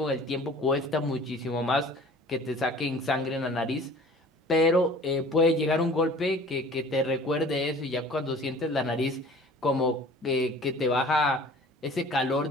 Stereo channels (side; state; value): both; normal; correlation 0.47